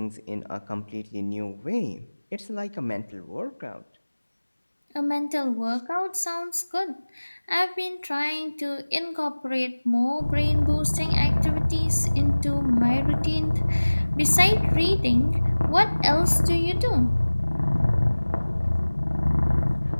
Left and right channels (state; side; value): inverted; both; correlation -1.00